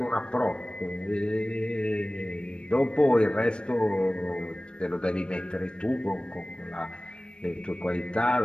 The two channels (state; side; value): late; right; 0.056 ms